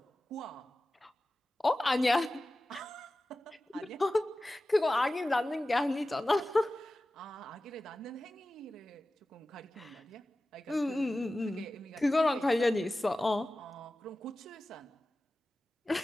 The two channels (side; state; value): both; normal; correlation 0.95